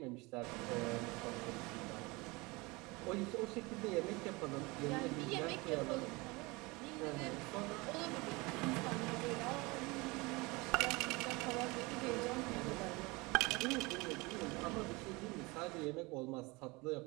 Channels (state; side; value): quieter; left; 24.6 dB